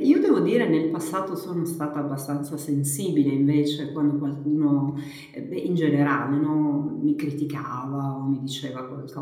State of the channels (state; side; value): identical; both; correlation 1.00